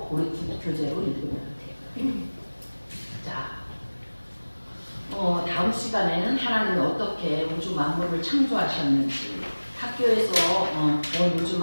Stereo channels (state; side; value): inverted; both; correlation -1.00